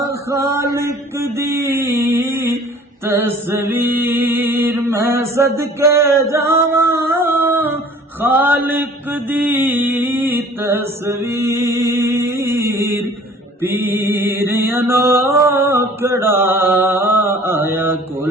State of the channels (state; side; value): normal; both; correlation 0.50